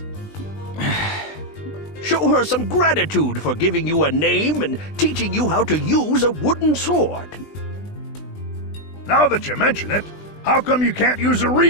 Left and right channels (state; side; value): late; right; 20 ms